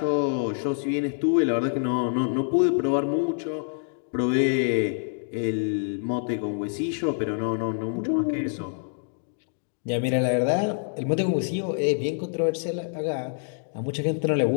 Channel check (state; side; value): silent; right; digital silence